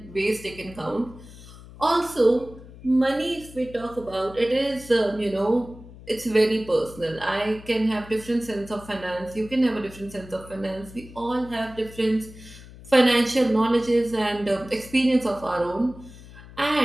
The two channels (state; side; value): noise; left; hum, 18 dB below the sound